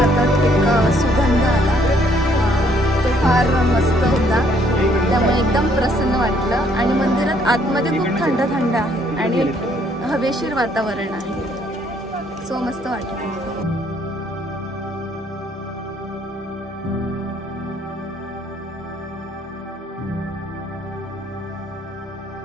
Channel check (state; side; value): normal; both; correlation 0.66